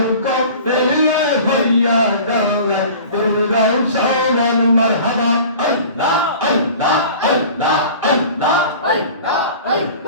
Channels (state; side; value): inverted; both; correlation -0.42